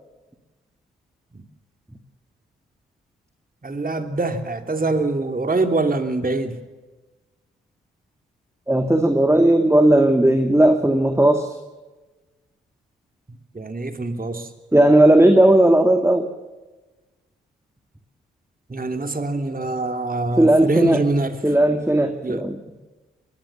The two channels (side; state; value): both; normal; correlation 0.87